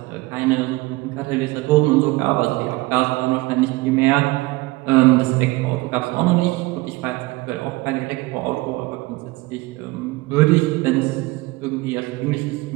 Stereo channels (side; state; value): left; quieter; 21.3 dB